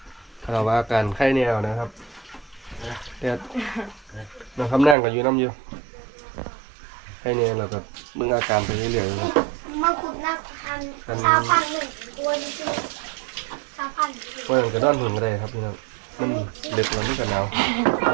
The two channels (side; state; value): left; drops out; at 5.0 s